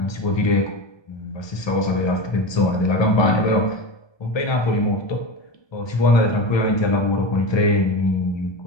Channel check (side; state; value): right; late; 1.2 ms